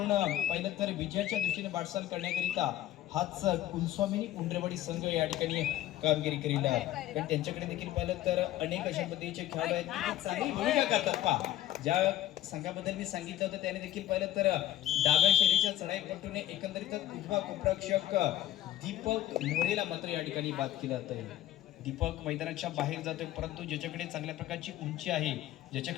पाहिलं तर विजयाच्या दृष्टीने वाटचाल करण्याकरिता हाच कुलस्वामिनी उंडरवाडी संघ या ठिकाणी कामगिरी करील आहे. पण त्यांच्याकडे देखील पाहिलं तर अनेक अशा पद्धतीचे खेळाडू आहेत की ते चांगली भूमिका करतात. पहा ज्या संघाबद्दल मी सांगितलं होतं त्याने देखील पाहिलं तर डाव्या शैलीच्या चढाईपट्टूने एकंदरीतच उजवा कोपरक्षक दीपक मोरेला मात्र या ठिकाणी बाद केलं जातं. दीपक मैदानाच्या बाहेर जातोय, परंतु ज्याच्याकडे चांगल्या प्रकारची उंची आहे,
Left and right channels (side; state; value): right; quieter; 13.5 dB